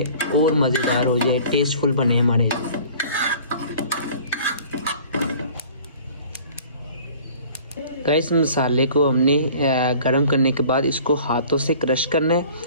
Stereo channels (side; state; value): both; inverted; correlation -0.48